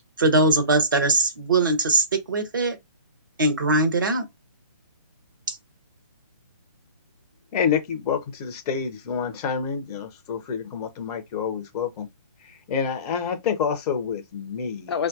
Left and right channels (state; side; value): inverted; both; correlation -0.35